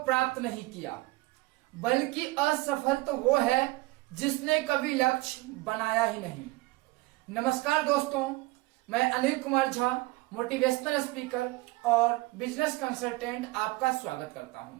प्राप्त नहीं किया, बल्कि असफल तो वो है जिसने कभी लक्ष्य बनाया ही नहीं। नमस्कार दोस्तों, मैं अनिल कुमार झा, मोटिवेशनल स्पीकर और बिजनेस कंसल्टेंट आपका स्वागत करता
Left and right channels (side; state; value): left; quieter; 21.6 dB